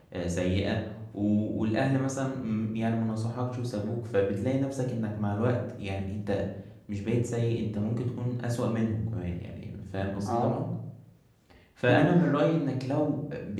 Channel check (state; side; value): identical; both; correlation 1.00